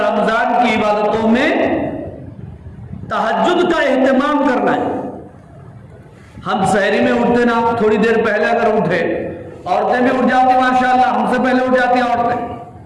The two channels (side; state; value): both; identical; correlation 1.00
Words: की इबादतों में तहज्जुद का एहतमाम करना है। हम सहरी में उठते ना, थोड़ी देर पहले अगर उठे, औरतें भी उठ जाती माशाअल्लाह, हमसे पहले उठ जाती हैं औरतें।